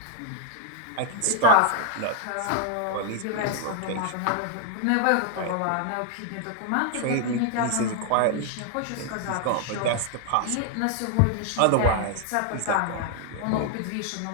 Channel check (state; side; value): different; both; correlation 0.00